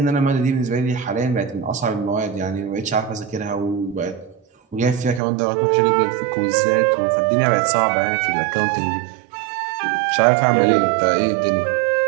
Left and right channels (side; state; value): left; drops out; at 5.2 s